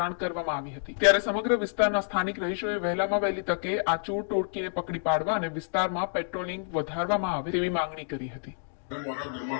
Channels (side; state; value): right; silent; digital silence